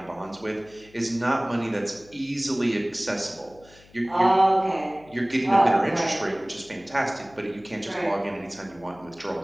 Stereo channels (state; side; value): noise; left; hum, 26 dB below the sound